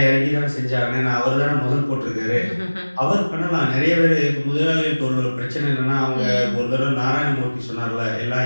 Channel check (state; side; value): inverted; both; correlation -1.00